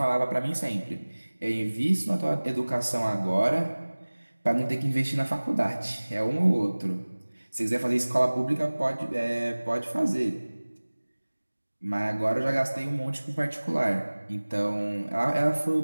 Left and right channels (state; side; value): inverted; both; correlation -1.00